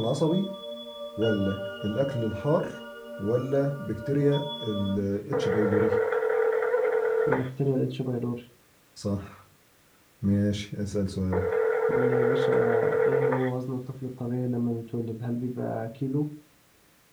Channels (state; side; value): identical; both; correlation 1.00